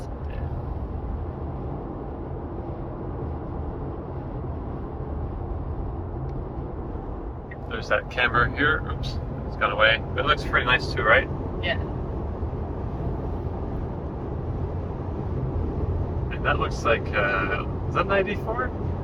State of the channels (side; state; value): both; identical; correlation 1.00